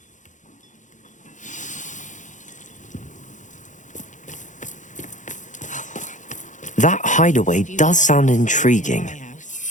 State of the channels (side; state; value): right; late; 0.36 ms